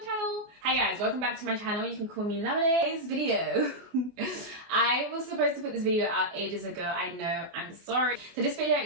channel. Hi guys, welcome back to my channel. You can call me Lemonade. Today's video. I was supposed to put this video out ages ago. I know, I'm sorry. So this video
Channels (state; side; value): late; left; 24 ms